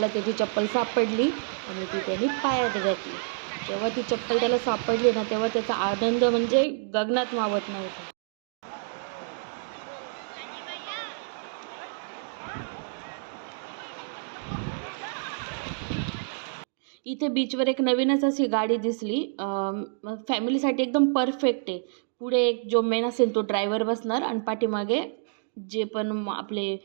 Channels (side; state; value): left; silent; digital silence